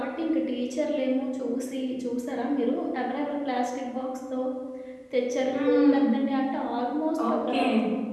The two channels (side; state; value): both; identical; correlation 1.00